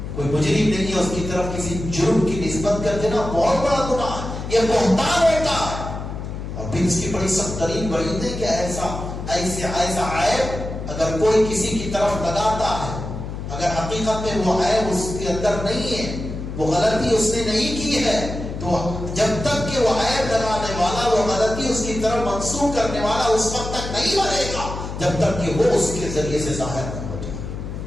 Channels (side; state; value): left; noise; hum, 7 dB below the sound